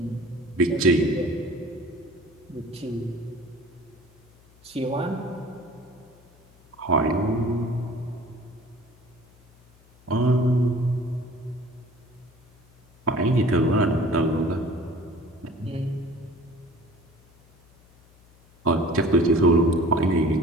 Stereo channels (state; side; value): noise; left; hum, 28 dB below the sound